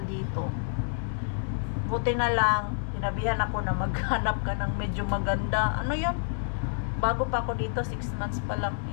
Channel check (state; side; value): silent; right; digital silence